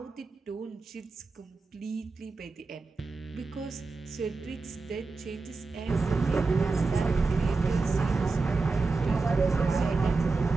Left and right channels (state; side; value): quieter; left; 4.0 dB